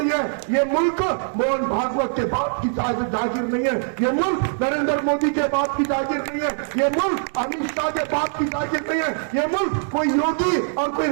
है। ये मुल्क मोहन भागवत के बाप की जागीर नहीं है, ये मुल्क नरेंद्र मोदी के बाप की जागीर नहीं है, ये मुल्क अमित शाह के बाप की जागीर नहीं है, ये मुल्क कोई योगी और कोई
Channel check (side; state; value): left; silent; digital silence